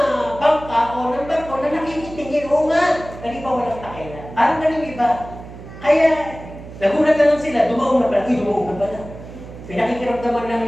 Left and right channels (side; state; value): right; noise; hum, 14 dB below the sound